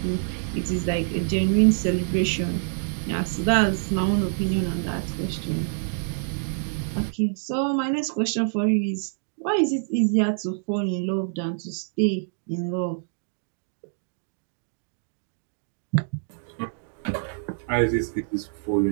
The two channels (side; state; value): left; silent; digital silence